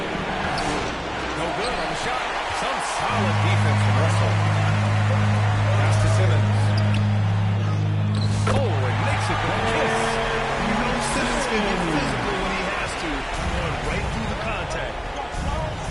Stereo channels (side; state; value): both; identical; correlation 1.00